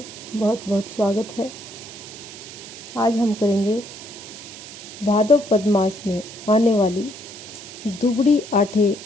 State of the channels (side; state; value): right; noise; hiss, 14 dB below the sound